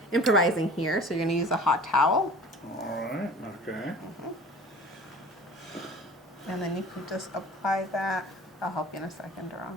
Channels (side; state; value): both; normal; correlation 0.43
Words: improvising here, so you're going to use a hot towel. All right. Okay. And then you can just apply that. I'll help you in a second,